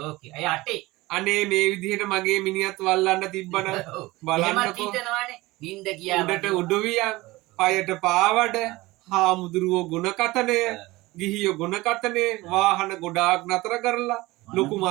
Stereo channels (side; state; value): left; quieter; 20.2 dB